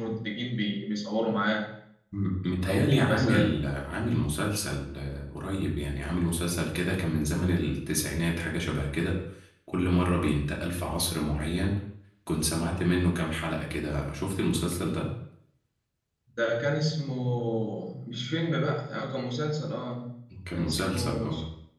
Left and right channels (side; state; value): both; identical; correlation 1.00